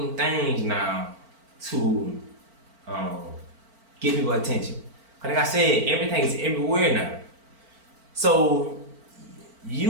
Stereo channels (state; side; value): late; left; 4.5 ms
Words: things now to get people attention. Cause like I said, everything is everywhere now. So